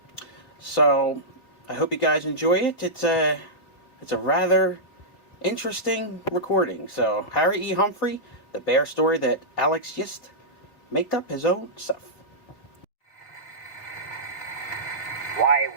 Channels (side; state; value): right; late; 3.6 ms